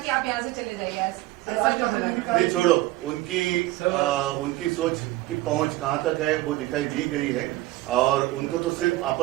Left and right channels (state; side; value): quieter; left; 17.5 dB